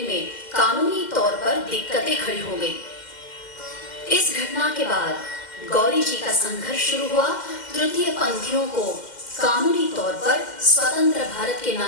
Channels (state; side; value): late; right; 2.1 ms